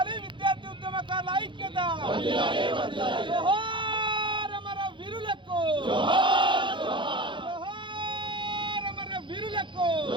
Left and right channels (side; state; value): left; late; 0.23 ms